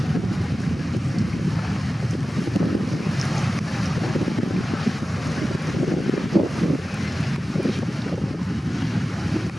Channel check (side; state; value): both; normal; correlation 0.95